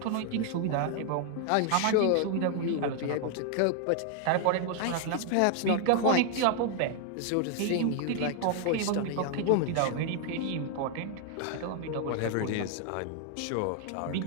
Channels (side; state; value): both; different; correlation 0.00